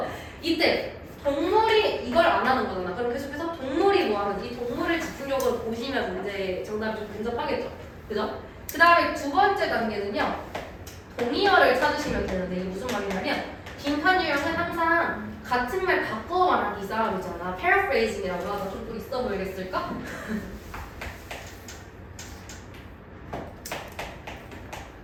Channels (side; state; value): both; identical; correlation 1.00